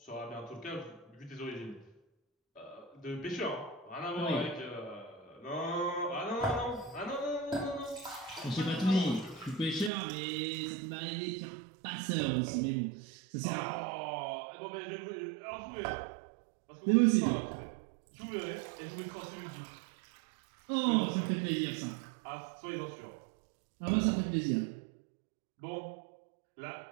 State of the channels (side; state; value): left; drops out; at 9.9 s